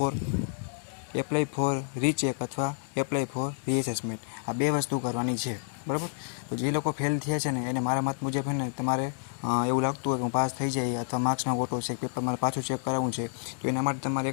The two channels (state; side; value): silent; right; digital silence